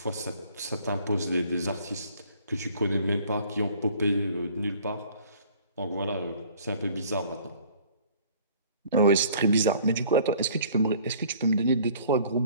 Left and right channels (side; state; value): both; inverted; correlation -0.53